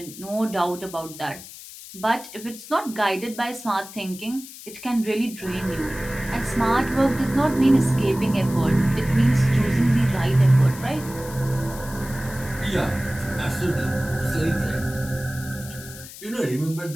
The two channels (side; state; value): left; noise; hiss, 15 dB below the sound